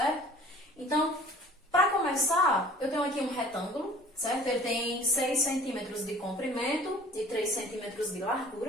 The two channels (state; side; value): normal; both; correlation 0.48